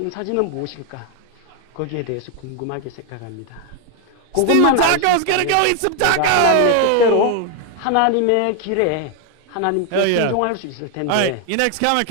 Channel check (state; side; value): different; both; correlation 0.00